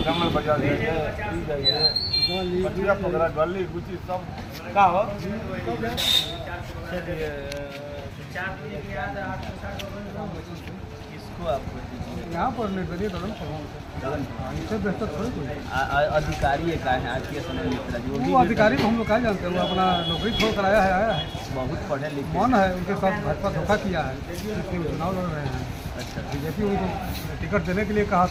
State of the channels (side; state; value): both; identical; correlation 1.00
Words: कमल बाजार जाइए 15 गली गुची सब का हो। चलिए किसको आप यहाँ पर निर्दलीय ददन पहलवान इससे बेहतर थोड़ी कोई। अधिकारी का है आज के समय में? वो अधिकारी को हम लोग क्या जानते हैं, वो अपना नौकरी छोड़ कर आया है। बहुत पढ़े लिखे मन है, उनके साथ भाजपा धोखा किया है, इसलिए वो चुनाव लड़ रहे हैं। अच्छा, बीजेपी उनको टिकट देने के लिए कहा